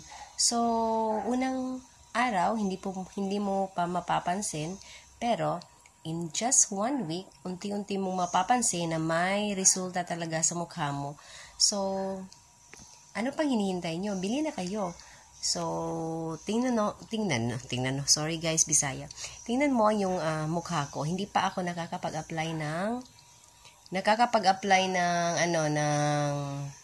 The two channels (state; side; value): identical; both; correlation 1.00